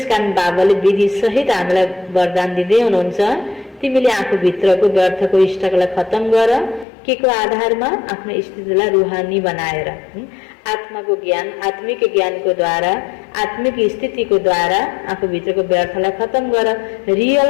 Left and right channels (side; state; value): right; drops out; at 6.9 s